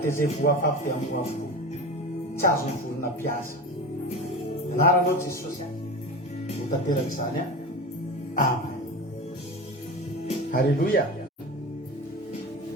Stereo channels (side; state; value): both; normal; correlation 0.28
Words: dia izay voafafy dia amboa avokoa tsy azo ny volona mpiasa. Anaranao Jesosy a ho tanteraka izany a. Amen. Halleluia.